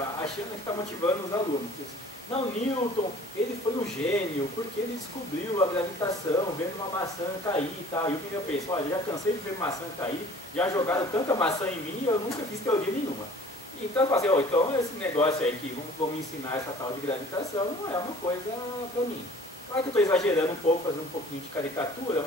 achando que está motivando os alunos. Não, Newton, ele foi um gênio, porque ele descobriu a gravitação, vendo uma maçã cair e tal. E o que eu penso, olha, já cansei de ver maçã cair, já jogaram tanta maçã em mim, eu nunca fiz teoria nenhuma. Então, eu falei, então esse negócio aí que vão me ensinar essa tal de gravitação não é uma coisa para mim. Claro que eu estou exagerando um pouco, fazendo um pouquinho de caricatura,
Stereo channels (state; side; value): normal; both; correlation 0.50